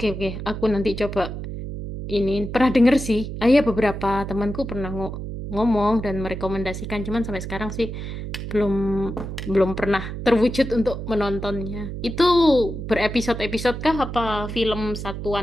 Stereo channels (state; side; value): noise; right; hum, 7 dB below the sound